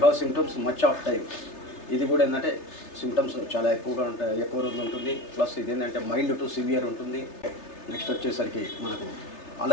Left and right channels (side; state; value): right; late; 3.3 ms